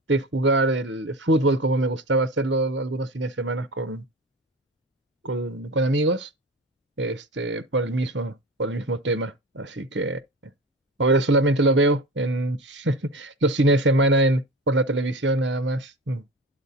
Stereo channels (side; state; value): both; normal; correlation 0.30